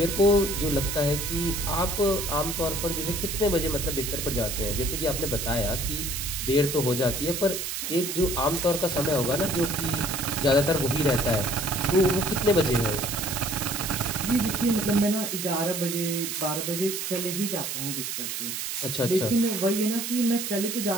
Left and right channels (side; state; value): right; noise; hiss, 4 dB below the sound